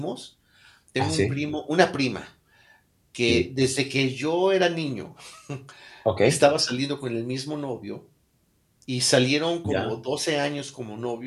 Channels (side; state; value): both; identical; correlation 1.00